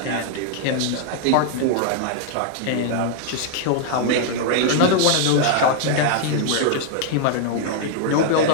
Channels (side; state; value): both; different; correlation 0.00